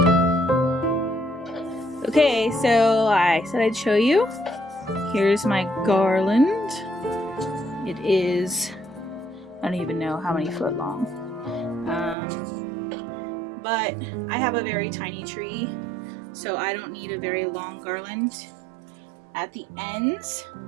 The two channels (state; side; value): drops out; left; at 12.2 s